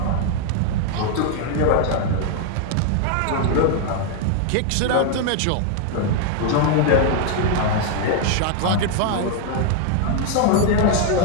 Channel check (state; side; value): different; both; correlation 0.00